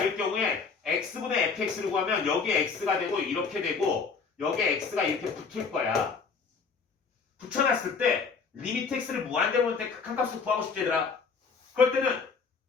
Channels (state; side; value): quieter; right; 5.1 dB